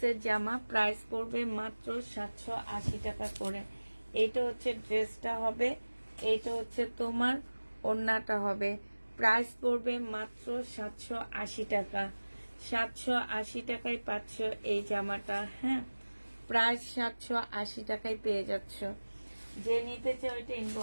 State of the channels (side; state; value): both; inverted; correlation -1.00